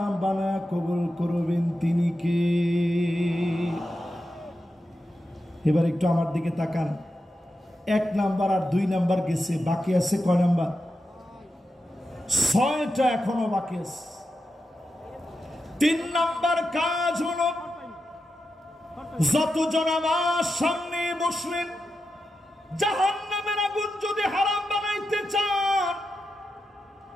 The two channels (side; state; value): both; normal; correlation 0.89